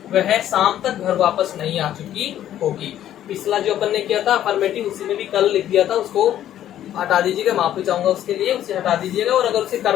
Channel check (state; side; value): quieter; right; 11.6 dB